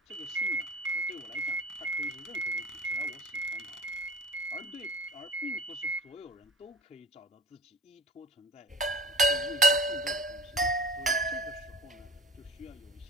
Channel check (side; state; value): both; normal; correlation 0.40